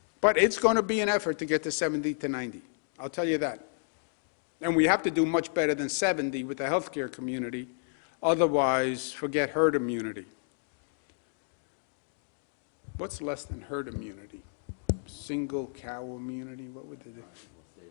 But it's going to be an effort to get to 70 to 90. I'll tell you that. And we have to do much better than 70 with the healthcare community. Otherwise, forget herd immunity. What's less than herd immunity? Single cow immunity? What would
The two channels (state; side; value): silent; right; digital silence